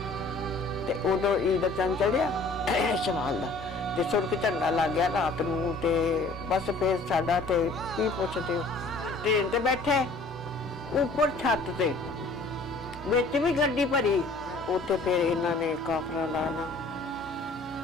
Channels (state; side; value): quieter; right; 3.3 dB